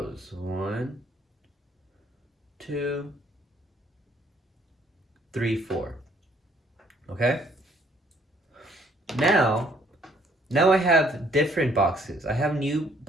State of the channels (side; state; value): both; normal; correlation 0.63